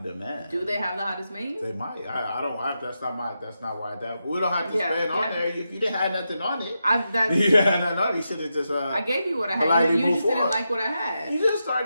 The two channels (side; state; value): both; inverted; correlation -0.87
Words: demand. Do they have the hottest menu? They might. That's not why that. We don't have to spend on there. If you didn't have nothing on it, you had nothing on it. You should have just. I gave you what I had. You just didn't like what I had. You just